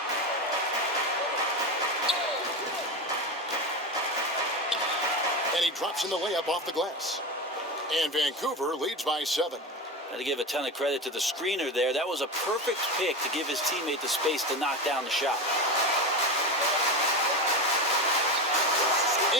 And he drops in the layup off the glass. And Vancouver leads by 7. Got to give a ton of credit to the screener there. That was a perfect pick to give his teammate the space to knock down the shot.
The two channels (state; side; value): normal; both; correlation 0.21